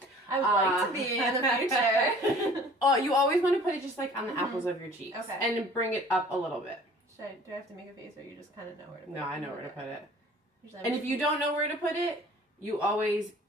I would like to be in the future. Oh, you always want to put it just like on the apples of your cheeks, and bring it up a little bit. Do I have to make a face, or you just kind of know where to put it? No, I know where to put it. And if you don't know where to put it, you always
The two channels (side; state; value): both; normal; correlation 0.50